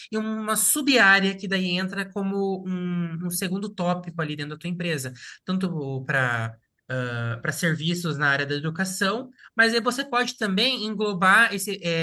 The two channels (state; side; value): identical; both; correlation 1.00